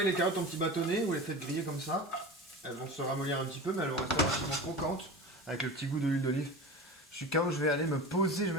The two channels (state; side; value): normal; both; correlation 0.31